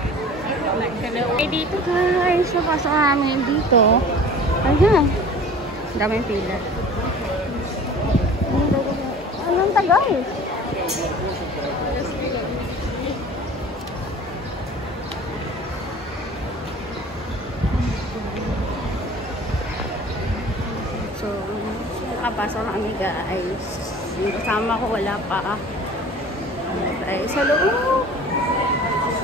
Ay, dito guys. Papasok namin dito. Ayan. Daming pila. Anong tagal? So, nakapasok na kami guys. Yung kasama ko wala pa. Ay, sa loob.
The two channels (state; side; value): normal; both; correlation 0.43